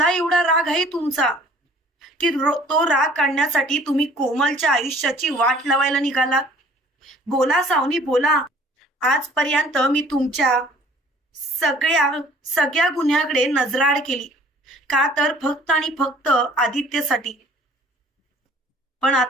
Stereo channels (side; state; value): both; normal; correlation 0.54